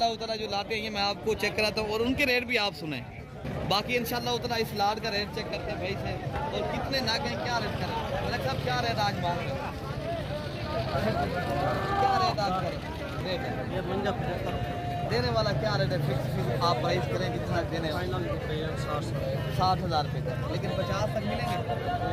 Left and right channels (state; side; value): identical; both; correlation 1.00